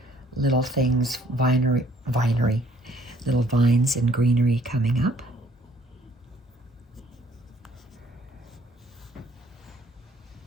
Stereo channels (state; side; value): normal; both; correlation 0.62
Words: little things, vinery, little vines and greenery coming up.